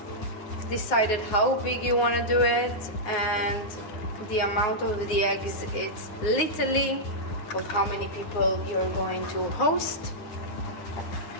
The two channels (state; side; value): late; right; 9.8 ms